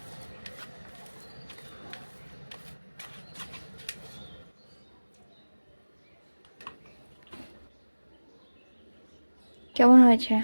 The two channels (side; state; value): both; inverted; correlation -1.00